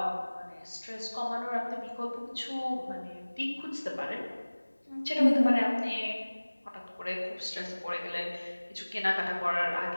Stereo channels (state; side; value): inverted; both; correlation -1.00